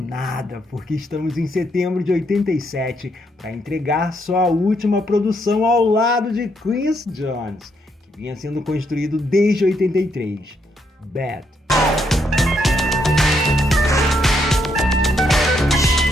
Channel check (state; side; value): normal; both; correlation 0.75